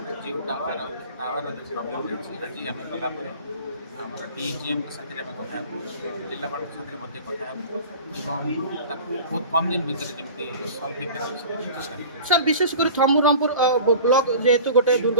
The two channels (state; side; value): inverted; both; correlation -0.40